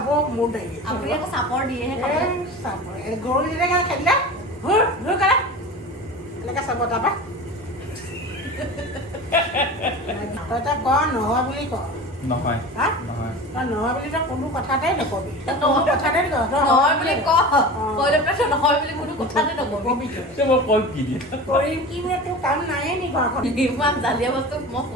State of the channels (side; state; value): both; normal; correlation 0.33